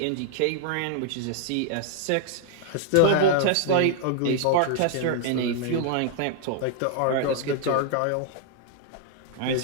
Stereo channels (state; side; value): different; both; correlation -0.01